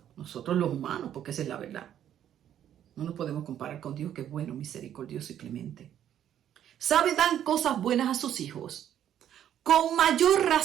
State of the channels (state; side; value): quieter; left; 10.5 dB